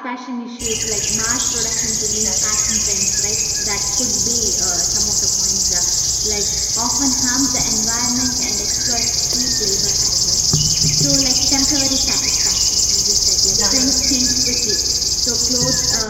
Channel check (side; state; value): both; identical; correlation 1.00